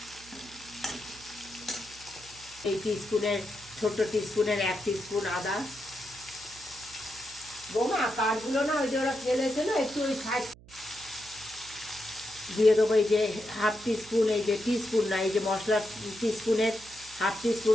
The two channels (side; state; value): right; noise; hum, 22 dB below the sound